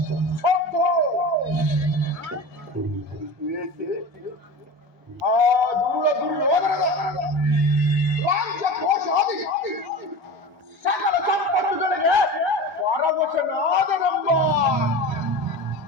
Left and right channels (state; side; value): normal; both; correlation 0.31